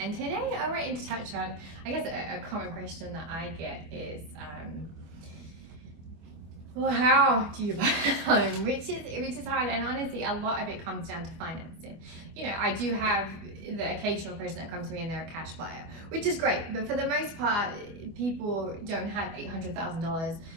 today I wanted to touch on, I guess a common question that I get is, well, how do you buy a home? Which is hard, and honestly, a lot of it comes down to financing. You know, I do have the occasional person that comes to me and they're a cash buyer, which is great, but for the most part, people don't have $800,000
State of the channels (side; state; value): left; late; 24 ms